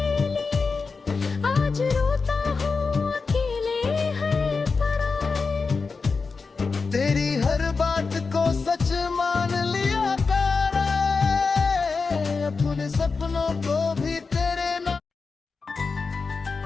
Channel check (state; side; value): quieter; right; 4.6 dB